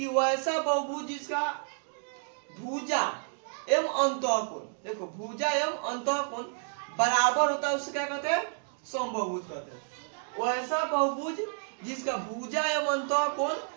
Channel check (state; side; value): silent; left; 57 dB below the other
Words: वैसा बहुभुज जिसका भुजा एवं अंतः कोण, देखो भुजा एवं अंतः कोण बराबर होता है, उससे क्या कहते हैं, समबाहुभुज कहते हैं। वैसा बहुभुज जिसका भुजा एवं अंतः कोण